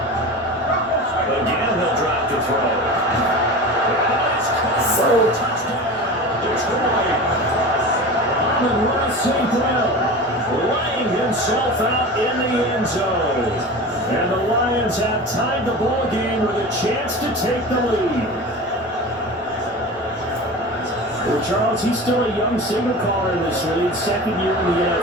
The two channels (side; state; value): both; normal; correlation 0.32